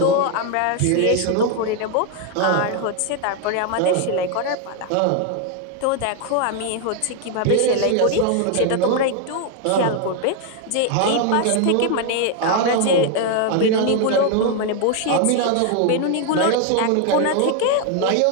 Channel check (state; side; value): different; both; correlation 0.01